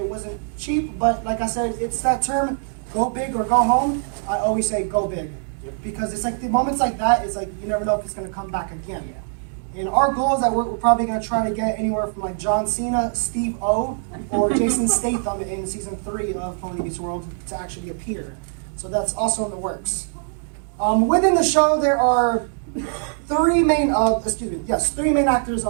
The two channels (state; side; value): silent; left; digital silence